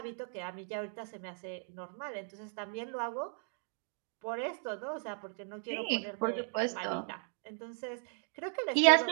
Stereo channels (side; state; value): left; silent; 53 dB below the other